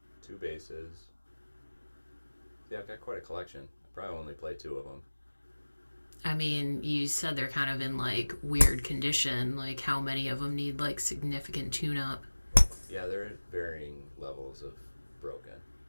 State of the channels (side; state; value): both; inverted; correlation -1.00